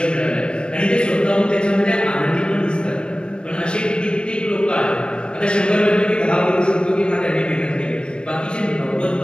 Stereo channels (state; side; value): late; right; 0.055 ms